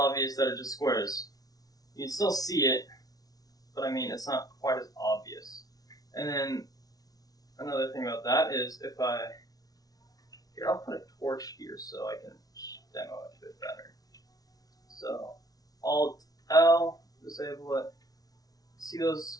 that it just squares. You can still see it, but I mean, it's not quite as obvious. And then another thing about that is if here, I'll put a torch here so I can demo it a bit better. So, Alt L, disable it. See those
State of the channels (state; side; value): late; right; 0.18 ms